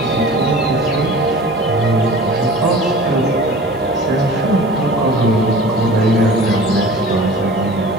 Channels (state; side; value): normal; both; correlation 0.41